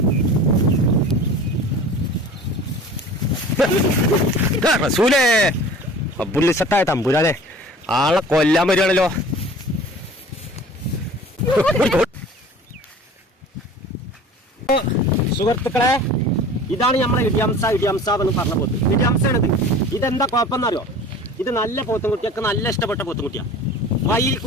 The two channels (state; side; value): normal; both; correlation 0.42